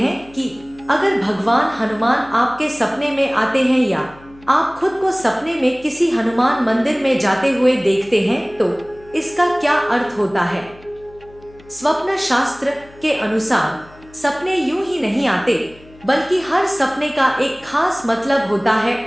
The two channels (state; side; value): noise; left; hum, 24 dB below the sound